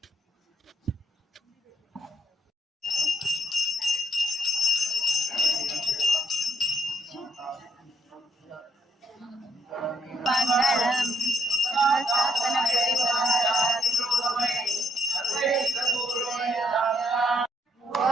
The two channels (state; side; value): normal; both; correlation 0.73